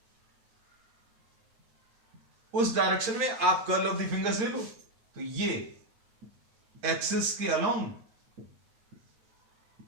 उस डायरेक्शन में आप कर्ल ऑफ द फिंगर्स ले लो, तो ये एक्सिस के अलोंग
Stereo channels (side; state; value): left; late; 8.7 ms